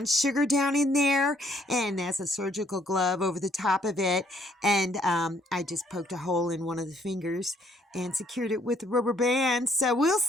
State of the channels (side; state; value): both; normal; correlation 0.67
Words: sugar down in there, and that's a surgical glove over the top of it. And I just poked a hole in one of the fingers and secured it with a rubber band. So we'll